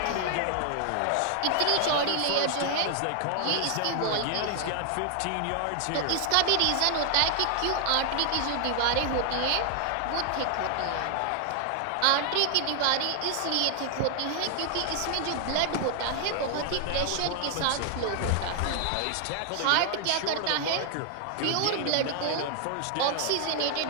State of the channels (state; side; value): different; both; correlation 0.00